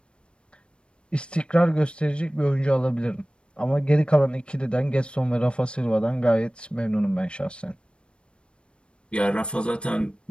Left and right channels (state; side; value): late; right; 0.056 ms